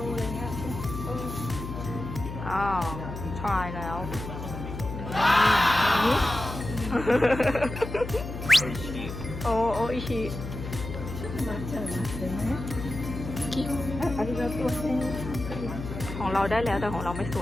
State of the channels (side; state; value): left; noise; hum, 8 dB below the sound